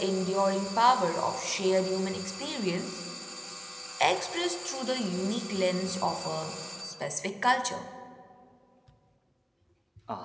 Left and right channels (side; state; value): both; identical; correlation 1.00